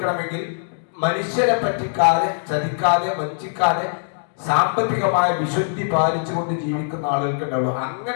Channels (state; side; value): silent; right; digital silence